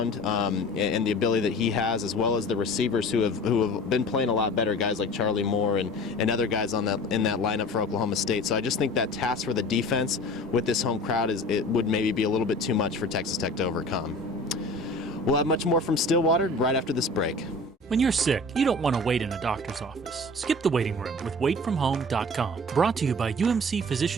and the ability that he has, as well as the receivers who have been playing a lot better, guys like Charlie Moore and other guys in that lineup for Oklahoma State. So I just think that task for the defense with this home crowd would maybe be a little bit too much for Texas Tech to overcome. We'll have much more from Stillwater right after this break. When you're sick, you don't want to wait in a doctor's office. Skip the waiting room with waitfromhome.com. Brought to you by UMC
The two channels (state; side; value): normal; both; correlation 0.41